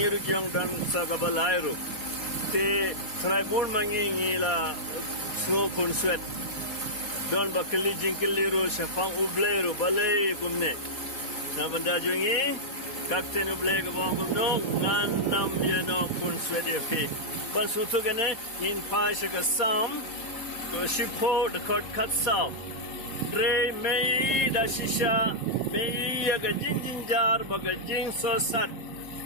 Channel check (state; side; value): late; right; 4.5 ms